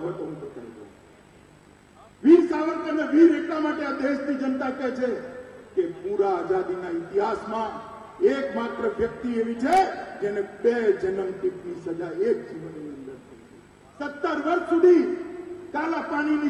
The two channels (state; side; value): identical; both; correlation 1.00